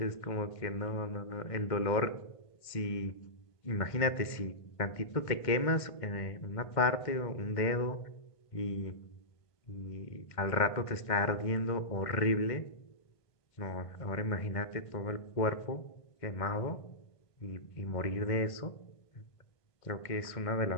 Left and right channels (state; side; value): late; right; 1.5 ms